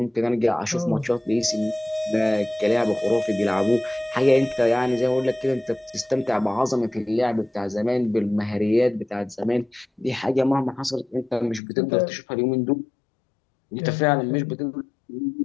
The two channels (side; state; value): right; drops out; at 11.6 s